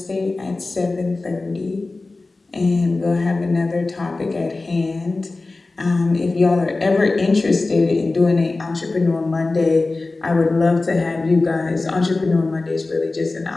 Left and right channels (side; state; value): right; quieter; 3.4 dB